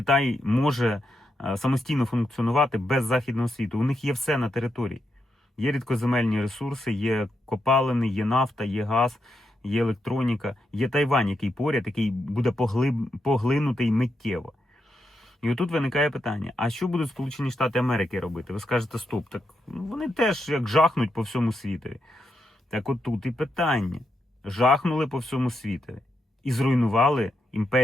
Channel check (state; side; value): normal; both; correlation 0.84